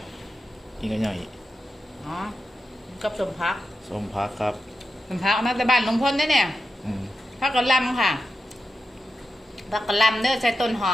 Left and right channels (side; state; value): both; normal; correlation 0.89